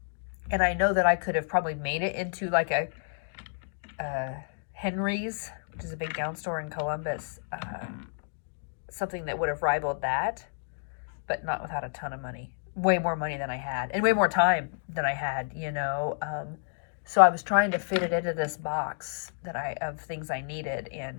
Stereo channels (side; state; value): right; silent; digital silence